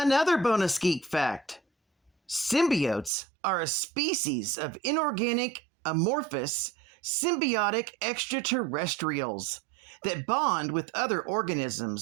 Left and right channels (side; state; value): left; drops out; at 3.1 s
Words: bonus geek fact: symbiotes are a species of inorganic, amorphous, symbiotic extraterrestrials that bond with other